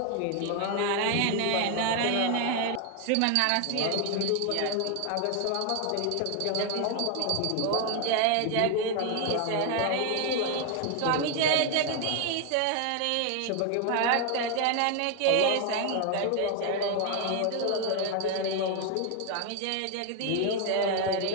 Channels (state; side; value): different; both; correlation 0.01